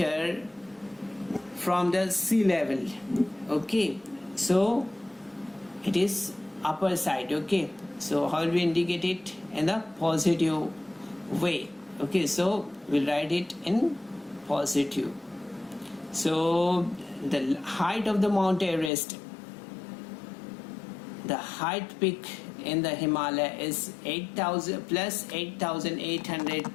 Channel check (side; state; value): right; drops out; at 18.9 s